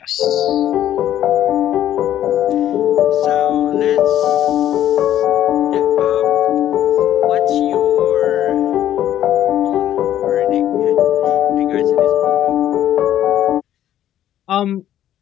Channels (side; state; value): right; quieter; 11.7 dB